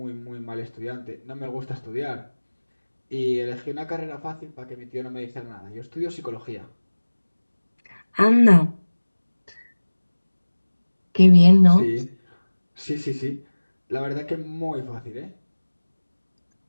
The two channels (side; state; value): both; inverted; correlation -1.00